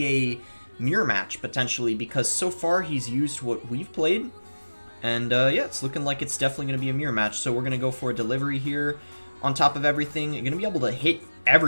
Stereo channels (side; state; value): both; inverted; correlation -1.00